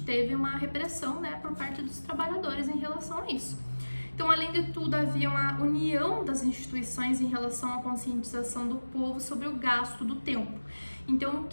teve uma repressão, né, por parte dos trabalhadores em relação a isso. Então, além de tudo, havia uma união das instituições em relação à conscientização do povo sobre o gasto do tempo. Então, o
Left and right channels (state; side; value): inverted; both; correlation -1.00